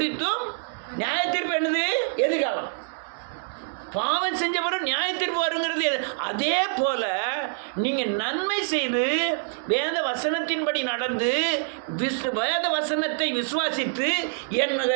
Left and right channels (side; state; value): left; silent; digital silence